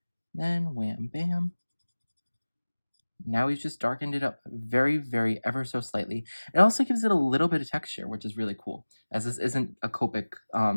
Then wham bam. Now we've just darkened it up very, very ever so slightly. It also gives it a little bit of texture, which is really cool, as this isn't a Copic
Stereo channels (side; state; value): both; inverted; correlation -1.00